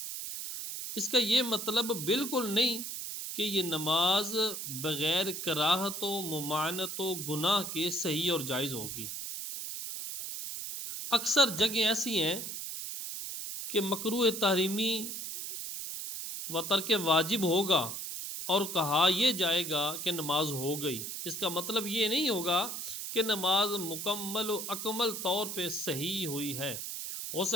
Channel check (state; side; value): noise; right; hiss, 6 dB below the sound